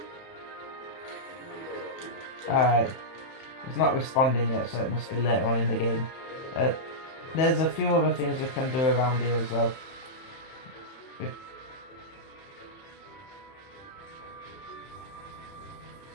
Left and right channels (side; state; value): right; late; 31 ms